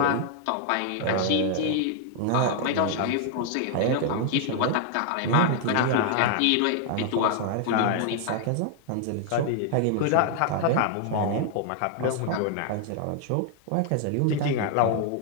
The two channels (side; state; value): both; different; correlation 0.00